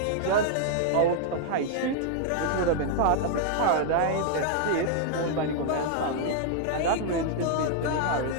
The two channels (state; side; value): different; both; correlation -0.01